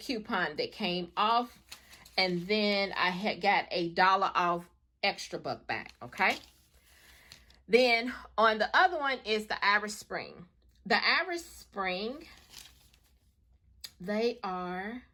that came off. And then I had got a $1 off extra buck back, okay? Then on the other one is the Irish Spring. The Irish Spring, they are,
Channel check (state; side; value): identical; both; correlation 1.00